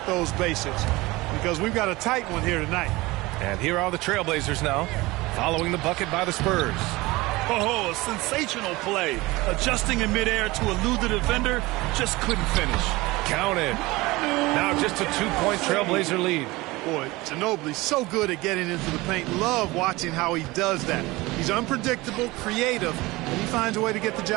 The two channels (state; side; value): quieter; left; 21.1 dB